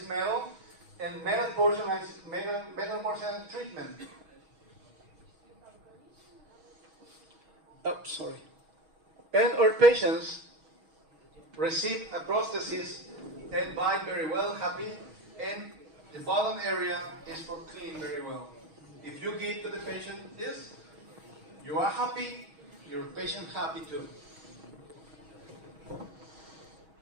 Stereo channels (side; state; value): left; late; 6.3 ms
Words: metal, and metal porcelain treatment. Oh, sorry. And our patients receive a prosthesis and bite very well, happy, and the bottom area is for clean very well. If you give to the patient this, you are happy, your patient happy too.